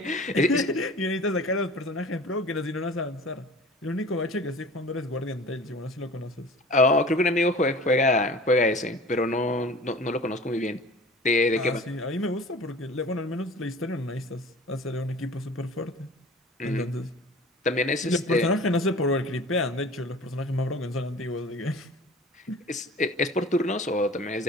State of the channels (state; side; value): normal; both; correlation 0.42